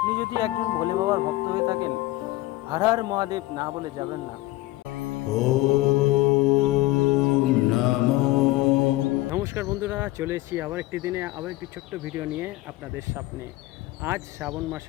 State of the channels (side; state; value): right; quieter; 18.3 dB